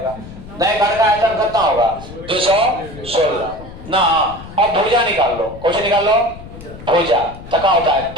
नए घन का आयतन कितना होगा? 216 ना। अब भुजा निकाल लो, कौन सी निकाल लो? भुजा। तो क्या होता है?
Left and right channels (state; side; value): noise; left; rumble, 15 dB below the sound